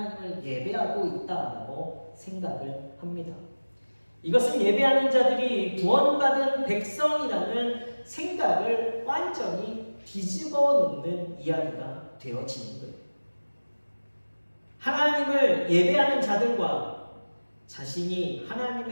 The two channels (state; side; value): inverted; both; correlation -1.00